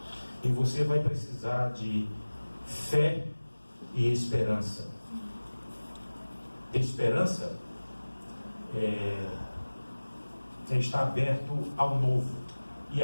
e você vai precisar de fé e esperança. Ter esperança é estar aberto ao novo e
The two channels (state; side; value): inverted; both; correlation -1.00